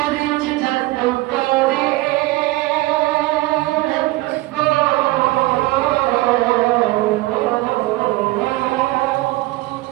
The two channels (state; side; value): quieter; left; 19.6 dB